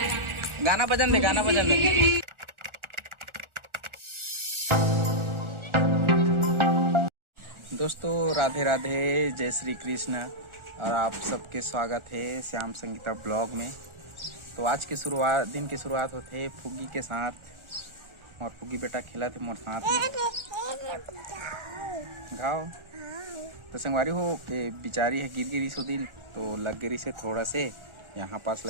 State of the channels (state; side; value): late; left; 1.4 ms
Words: गाना बजन दे गाना बजन दे। दोस्तों राधे राधे जय श्री कृष्ण और आप सबके स्वागत है श्याम संगीता ब्लॉग में। तो आज की शुरुआत दिन की शुरुआत होते है फुगी के साथ और फुगी बेटा खेला थे मोर साथ में घाव। तो संगवारी हो बिचारी है गिर गिरी सो दिन तो लग गिरी से थोड़ा से यहाँ पास